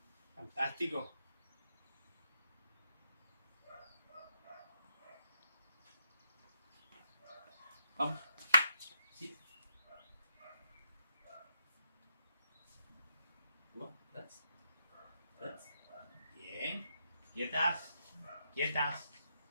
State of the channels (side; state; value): both; inverted; correlation -0.79